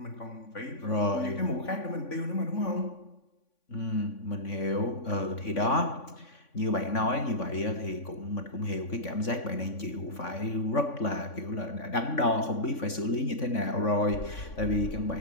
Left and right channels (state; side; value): late; right; 3.5 ms